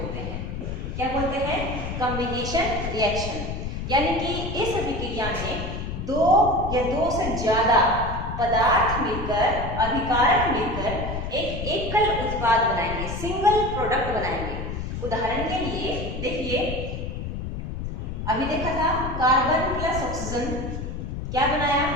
हैं। क्या बोलते हैं? Combination reaction. यानी कि इस अभिक्रिया में दो या दो से ज्यादा पदार्थ मिलकर, अभिकारक मिलकर एक एकल उत्पाद बनाएंगे, सिंगल प्रोडक्ट बनाएंगे। उदाहरण के लिए देखिए, अभी देखा था कार्बन प्लस ऑक्सीजन क्या बनाया?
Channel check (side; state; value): left; noise; rumble, 5 dB below the sound